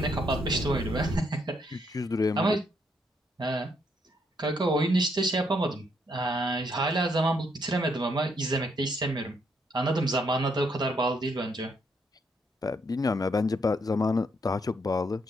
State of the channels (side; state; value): both; normal; correlation 0.74